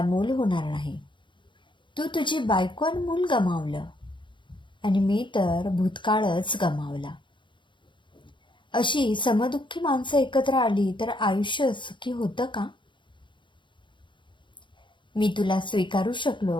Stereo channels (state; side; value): late; right; 0.23 ms